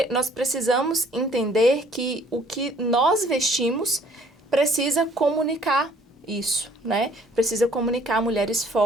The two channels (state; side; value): normal; both; correlation 0.58